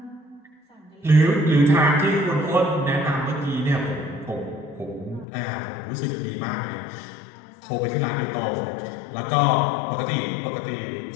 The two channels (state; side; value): drops out; right; at 5.2 s